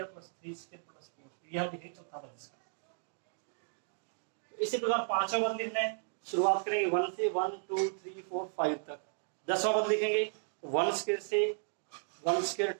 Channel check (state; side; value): silent; left; digital silence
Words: plus 3 square plus 4, ये हम लिखेंगे चौथा पद इसका। इसी प्रकार पांचवा पद लिखना है, शुरुआत करेंगे 1 से 1 2 3 4 5 तक। 10वां पद लिखेंगे 1 स्क्वायर से 1 स्क्वायर